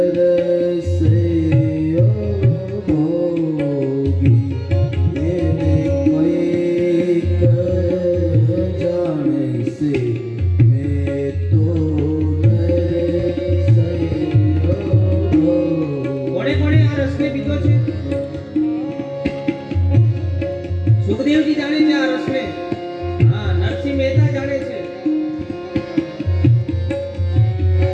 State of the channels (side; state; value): both; identical; correlation 1.00